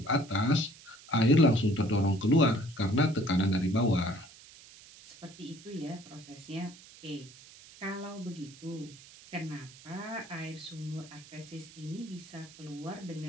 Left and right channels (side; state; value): right; noise; hiss, 20 dB below the sound